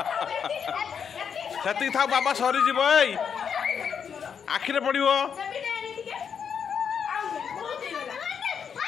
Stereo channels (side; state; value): right; quieter; 7.1 dB